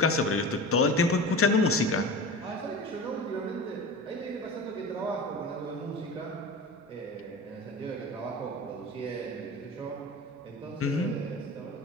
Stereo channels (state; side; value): normal; both; correlation 0.31